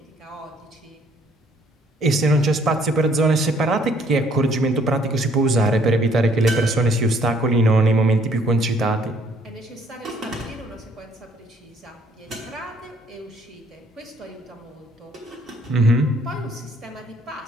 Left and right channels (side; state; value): both; normal; correlation 0.63